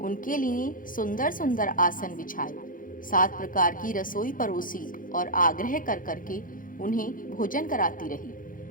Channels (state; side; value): late; right; 0.40 ms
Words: लिए सुंदर सुंदर आसन बिछाए, 7 प्रकार की रसोई परोसी और आग्रह कर करके उन्हें भोजन कराती रही।